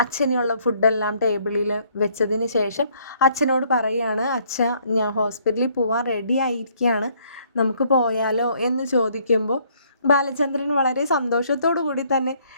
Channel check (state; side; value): inverted; both; correlation -0.65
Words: അച്ഛനുള്ള ഫുഡെല്ലാം ടേബിളിൽ വെച്ചതിന് ശേഷം അച്ഛനോട് പറയുകയാണ്, അച്ഛ ഞാൻ ഹോസ്പിറ്റലിൽ പോവാൻ റെഡി ആയിരിക്കുകയാണ്, നമുക്ക് പോയാലോ എന്ന് ചോദിക്കുമ്പോൾ ബാലചന്ദ്രൻ വളരെ സന്തോഷത്തോടു കൂടി തന്നെ,